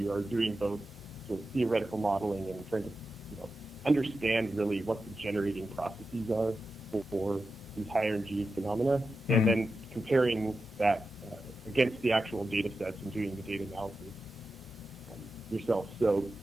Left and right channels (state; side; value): normal; both; correlation 0.91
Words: are doing both sort of theoretical modeling and trying to understand really what the generating processes are for these high energy phenomena, and then comparing that against the actual data sets and doing the data analysis yourself. So